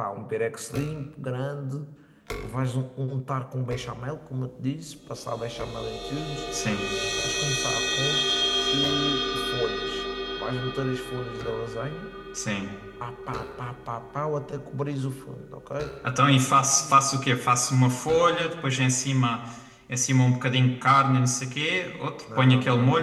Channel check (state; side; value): identical; both; correlation 1.00